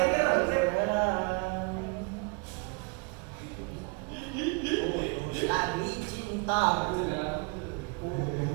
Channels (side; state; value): left; quieter; 30.6 dB